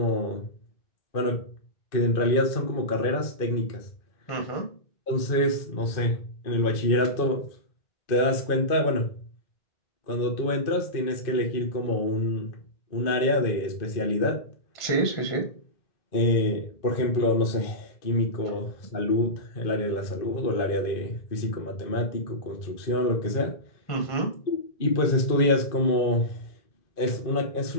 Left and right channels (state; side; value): late; right; 2.5 ms